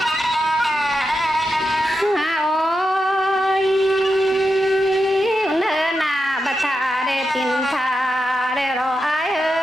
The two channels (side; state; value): both; normal; correlation 0.87